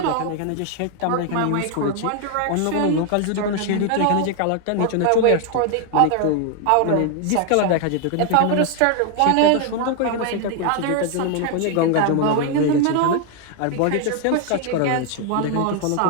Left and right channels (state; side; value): different; both; correlation 0.00